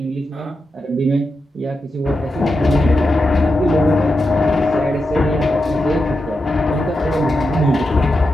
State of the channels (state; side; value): normal; both; correlation 0.88